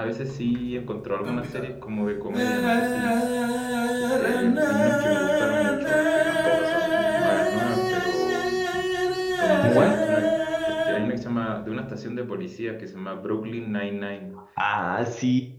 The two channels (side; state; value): both; identical; correlation 1.00